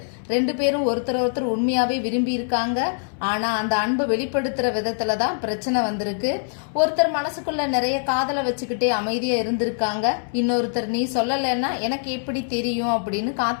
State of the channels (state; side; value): silent; right; 63 dB below the other